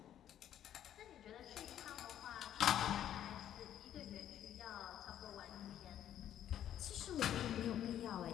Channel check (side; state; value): right; quieter; 10.9 dB